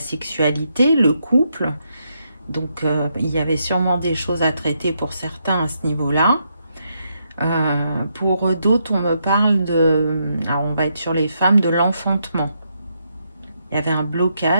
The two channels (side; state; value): both; inverted; correlation -0.79